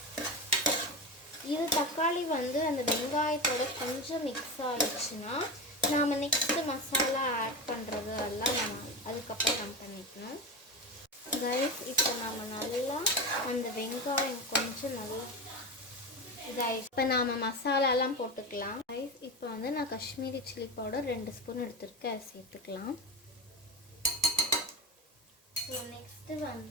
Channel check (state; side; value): normal; both; correlation 0.22